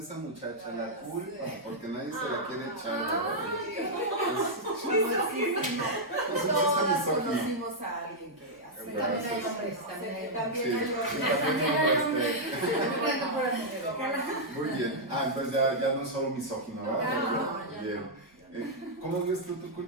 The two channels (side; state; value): both; normal; correlation -0.05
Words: esa muchacha? La culpa, porque nadie se la quiere echar. Todos conocimos a alguien que hace Sí, también hay hombres, también hay hombres. Sí, muy bien. Entonces ya no es solo misógino, ¿verdad? No, bien. ¿Cómo ves tú tu